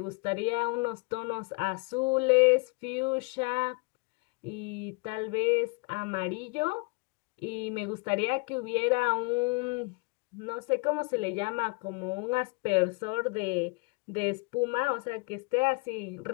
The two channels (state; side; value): quieter; right; 29.3 dB